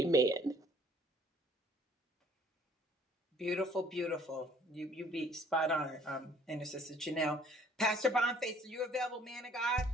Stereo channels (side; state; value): both; normal; correlation 0.56